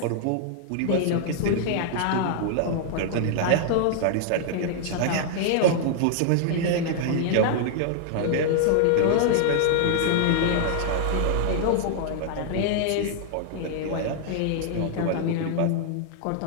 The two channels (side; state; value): both; different; correlation -0.01